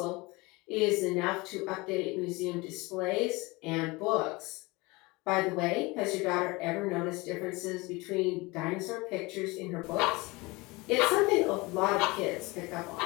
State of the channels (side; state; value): right; quieter; 23.9 dB